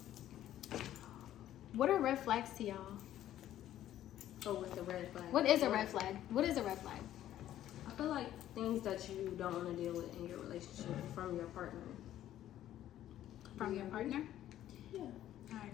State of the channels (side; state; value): right; quieter; 12.4 dB